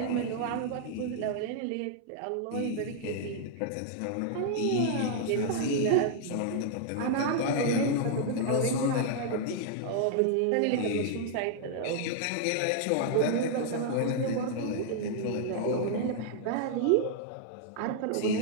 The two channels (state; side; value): different; both; correlation -0.01